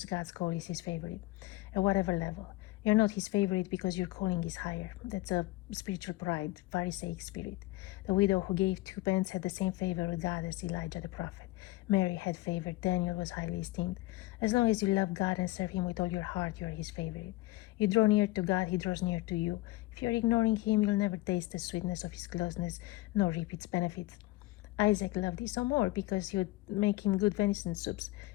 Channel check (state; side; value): quieter; right; 19.1 dB